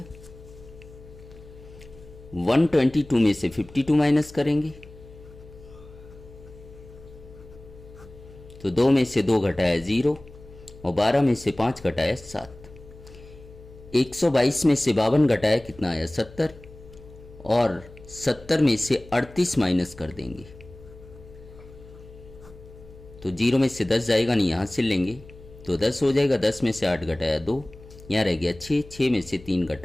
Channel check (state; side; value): noise; left; hum, 20 dB below the sound